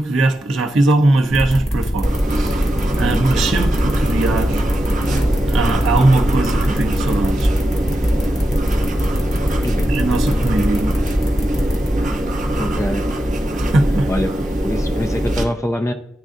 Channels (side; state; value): both; normal; correlation 0.88